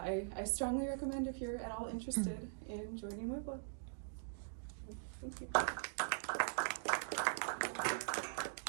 strongly recommend if you're at all interested in joining WiVLA. Thank you. Thank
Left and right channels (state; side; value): silent; left; digital silence